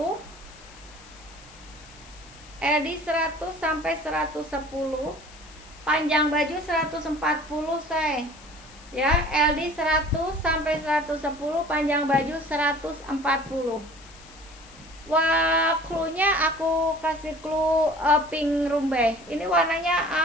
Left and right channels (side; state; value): left; noise; hiss, 22 dB below the sound